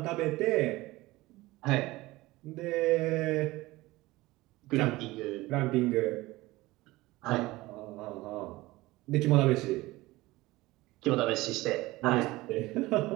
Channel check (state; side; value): quieter; left; 19.5 dB